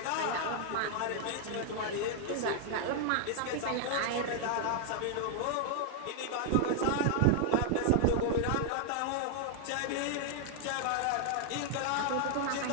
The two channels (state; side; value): different; both; correlation 0.00